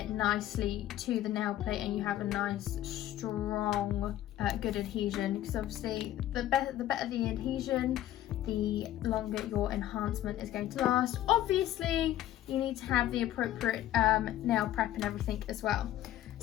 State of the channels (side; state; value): right; quieter; 13.2 dB